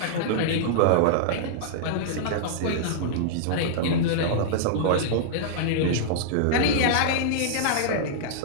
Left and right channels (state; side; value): different; both; correlation -0.01